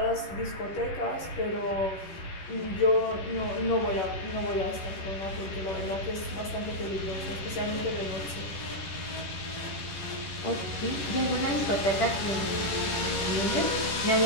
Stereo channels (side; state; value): right; late; 10 ms